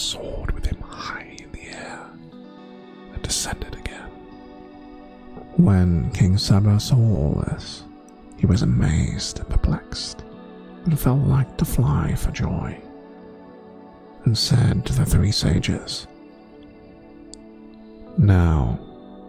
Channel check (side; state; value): both; identical; correlation 1.00